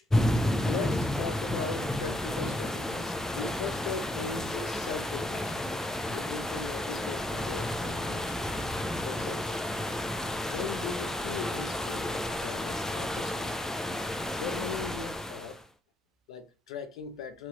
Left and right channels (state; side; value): normal; both; correlation 0.75